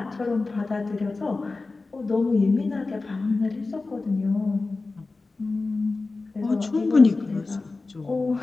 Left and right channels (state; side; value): quieter; right; 3.6 dB